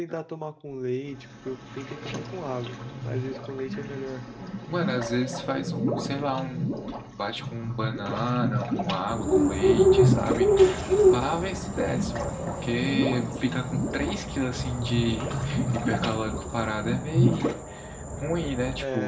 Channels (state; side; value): identical; both; correlation 1.00